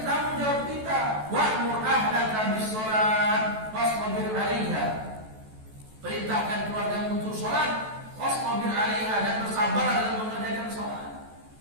tanggung jawab kita. Wa'mur ahlaka bis-sholat wasbir 'alaiha. Perintahkan keluarga untuk sholat, wasbir 'alaiha, dan bersabar dalam mengerjakan sholat.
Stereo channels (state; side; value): late; left; 14 ms